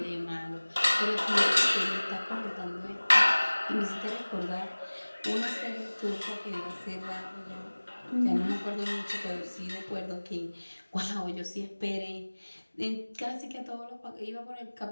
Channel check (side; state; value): both; inverted; correlation -1.00